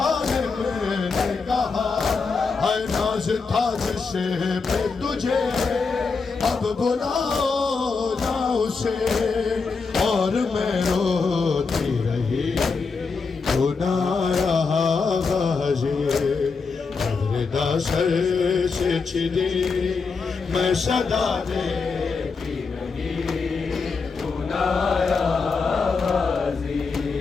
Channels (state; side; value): quieter; right; 4.7 dB